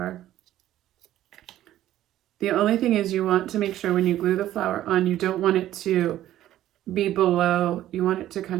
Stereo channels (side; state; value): left; quieter; 13.1 dB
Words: The only thing is you want to make sure when you glue the flower on, you don't want it to be below. You want it to